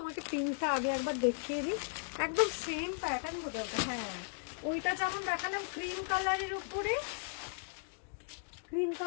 পিঙ্কটা আগে একবার দেখিয়ে দিই, একদম সেম প্যাটার্ন বোঝা। হ্যাঁ, ওইটা যেমন দেখালাম ক্রিম কালারের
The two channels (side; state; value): right; silent; digital silence